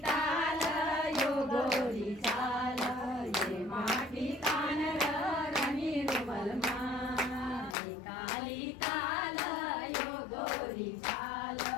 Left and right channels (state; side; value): drops out; right; at 7.8 s